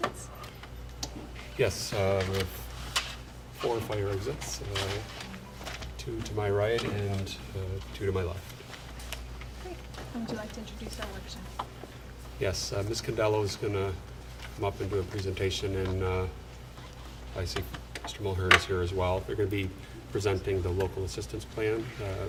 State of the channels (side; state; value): both; identical; correlation 1.00